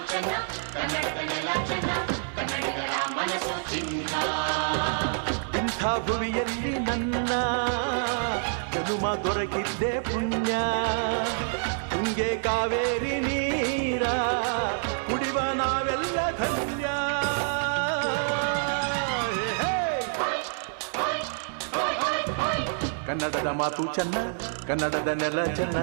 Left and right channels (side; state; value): left; silent; 60 dB below the other